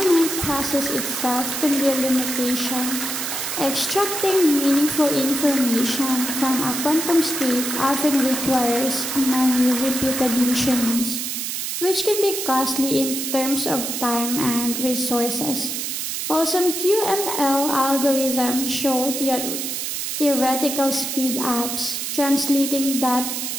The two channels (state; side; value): noise; right; hiss, 3 dB below the sound